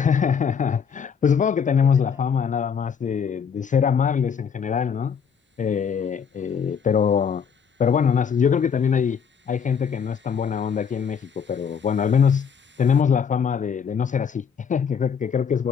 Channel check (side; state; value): right; quieter; 6.9 dB